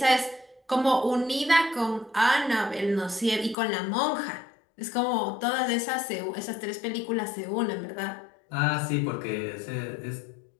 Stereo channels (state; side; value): drops out; right; at 3.6 s